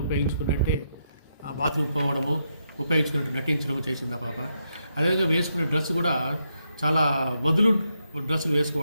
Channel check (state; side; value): inverted; both; correlation -0.81